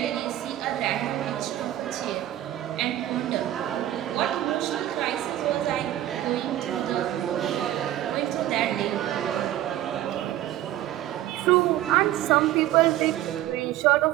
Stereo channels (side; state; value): left; quieter; 13.4 dB